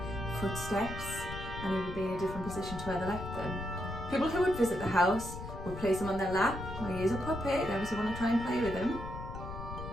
footsteps, and he would be in a different position to where they left them. People who would visit the house would place him on their lap. Well, he is a puppet, they obviously want to try and play with him.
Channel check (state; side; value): noise; left; rumble, 9 dB below the sound